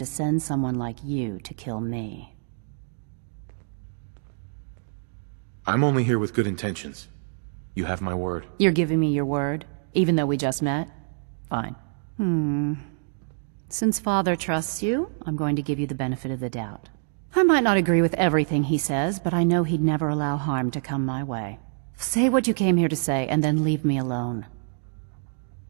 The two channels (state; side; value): silent; left; digital silence